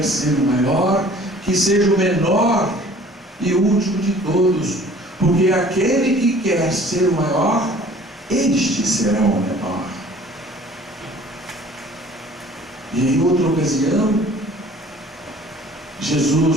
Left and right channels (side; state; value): both; normal; correlation 0.51